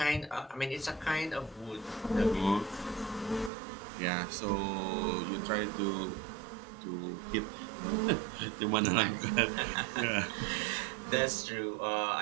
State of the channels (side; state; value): left; drops out; at 3.5 s